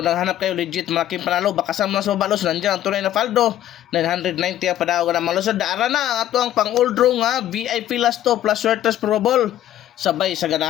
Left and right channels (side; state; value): right; quieter; 12.4 dB